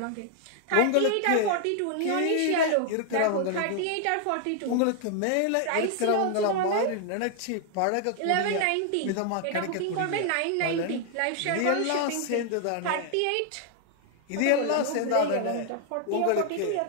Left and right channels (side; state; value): both; different; correlation 0.00